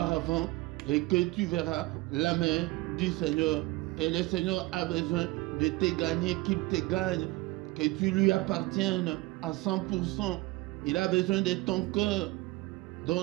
et que tu verras la main du Seigneur. Et le Seigneur a besoin de te gagner, qu'il te gagne, que tu lui appartiennes à 100%. Il a besoin de ton cœur.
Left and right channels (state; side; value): quieter; left; 21.2 dB